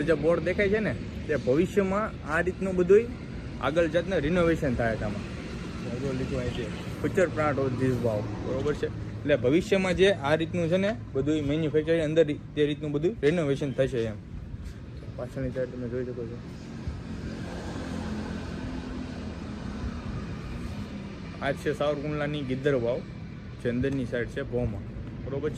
જે બોર્ડ દેખાય છે ને, તે ભવિષ્યમાં આ રીતનું બધું આગળ જાતને રિનોવેશન થાય છે. આમાં લીધું અહીં છે ફ્યુચર પ્લાન્ટ ઓફ ધીસ વાવ, બરોબર છે. એટલે ભવિષ્યમાં જે આ રીતનું છે ને બધું મેન્યુફેક્ચરિંગ અંદર તે રીતનું બધું રિનોવેશન થશે એમ. પાછળની સાઈડ તમે જોઈ શકો છો. આ છે સાવરકુંડલાની ગીધર વાવ, જે અંદરની સાઈડ છે ભોમાં, બરોબર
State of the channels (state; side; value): identical; both; correlation 1.00